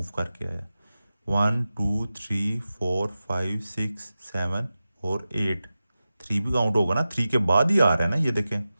करके आया, 1 2 3 4 5 6 7 और 8। 3 भी काउंट होगा ना, 3 के बाद ही आ रहा है ना, ये देखें,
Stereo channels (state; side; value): inverted; both; correlation -0.94